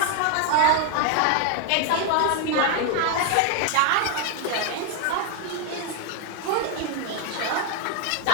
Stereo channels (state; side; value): different; both; correlation 0.00